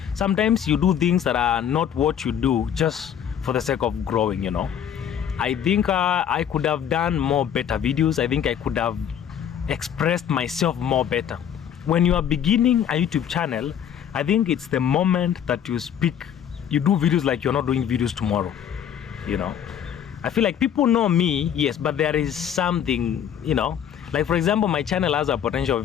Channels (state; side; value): quieter; right; 9.1 dB